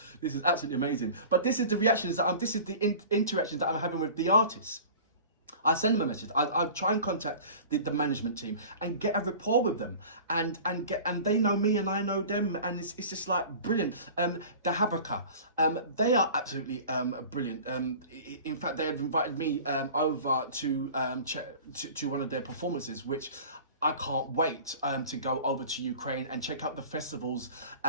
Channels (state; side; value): inverted; both; correlation -0.41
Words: This is absolutely amazing. But this is the reactions that this is the interactions that I'm having with the artists. I send them a message. I'll try and contact the management team and get a rapport with them, and they know me and I know them, and it's just like brilliant. The Habraka, they are absolutely brilliant. In fact, they have invited me over to one of their performances, which I can't wait to go over to Ukraine and check out the festivals